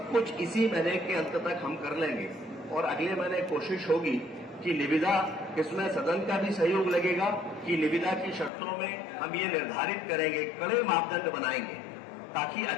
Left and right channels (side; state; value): right; drops out; at 8.5 s